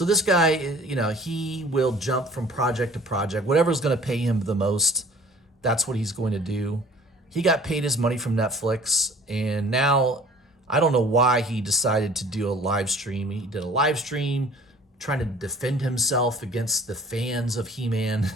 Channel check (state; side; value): normal; both; correlation 0.50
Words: this guy, he will jump from project to project. Whatever's going to pay him the most, that's what he's going to do. He got paid his money from Netflix, and now I don't know why he decided to do a live stream. He did a live stream trying to defend himself against the fans of He-Man,